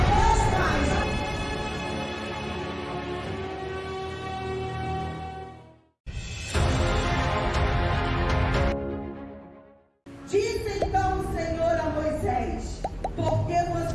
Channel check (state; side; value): identical; both; correlation 1.00